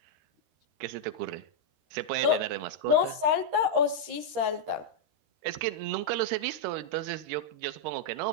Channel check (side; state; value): left; late; 13 ms